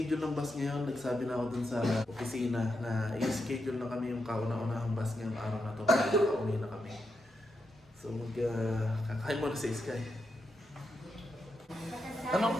ng bus ngayon. Nagsabi na ako dun sa opisina na i-schedule na kami yung kauna-unahang bus ngayong araw na to para makauwi na kami. So, kakain mo na si Sky.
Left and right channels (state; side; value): normal; both; correlation 0.84